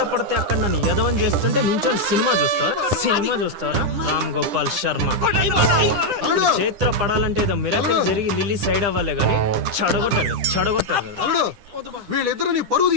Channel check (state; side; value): late; left; 9.9 ms